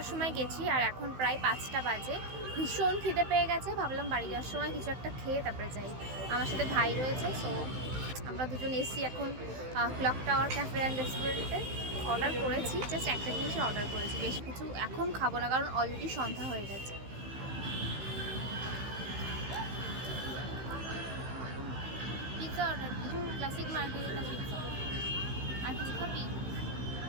সময় গেছি আর এখন প্রায় 5টা বাজে। ভীষণ খিদে পেয়ে গেছে, ভাবলাম বাড়ি যাওয়ার সময় কিছু একটা খেয়ে তারপরে যাই। আমার সাথে ভাই রয়েছে, সো আমরা দুজন এসছি এখন ক্লক টাওয়ার ক্যাফে অ্যান্ড রেস্টুরেন্টে। অর্ডার করেছি, জাস্ট একটা জিনিসই অর্ডার করেছি, বেশি কিছু এখন খাবো না কারণ অলরেডি সন্ধ্যা হয়ে গেছে। পিৎজা অর্ডার দিই, ক্লাসিক মার্গারিটা পিৎজা। আর কিছু খাবি?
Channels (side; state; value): left; late; 16 ms